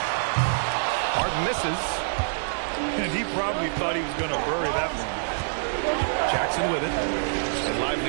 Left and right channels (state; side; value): silent; left; digital silence